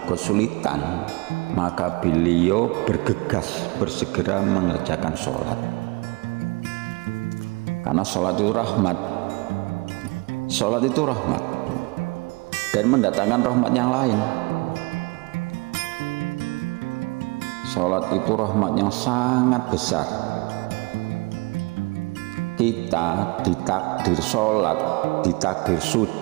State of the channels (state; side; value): quieter; left; 27.5 dB